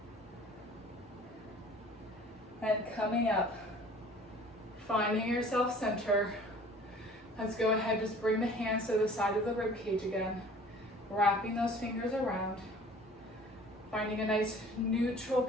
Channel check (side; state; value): both; normal; correlation 0.49